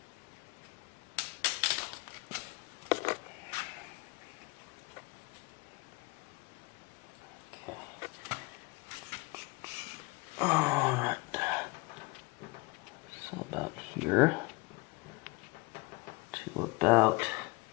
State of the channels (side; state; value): right; quieter; 25.9 dB